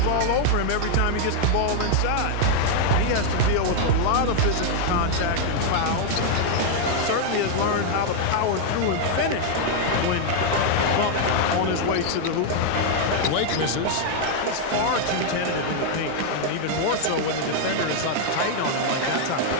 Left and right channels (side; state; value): both; different; correlation 0.00